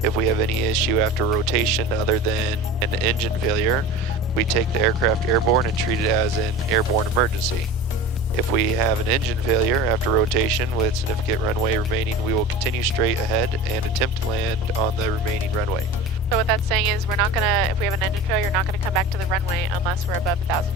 If we have any issue after rotation other than an engine failure, we take the aircraft airborne and treat it as an airborne emergency. If we have an engine failure after rotation with significant runway remaining, we will continue straight ahead and attempt to land on the remaining runway. So what that's saying is we're not gonna, if we have an engine failure, we're not gonna come back to the runway unless we're above 1,000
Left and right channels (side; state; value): both; normal; correlation 0.35